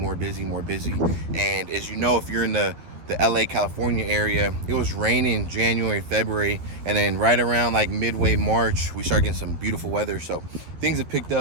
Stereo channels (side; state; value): left; late; 12 ms